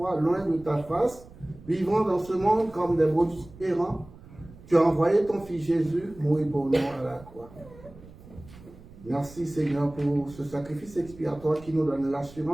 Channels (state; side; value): noise; right; rumble, 20 dB below the sound